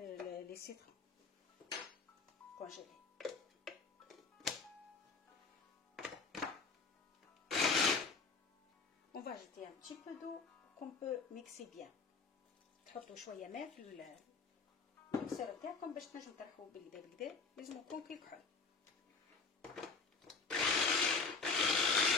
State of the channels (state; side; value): quieter; right; 4.5 dB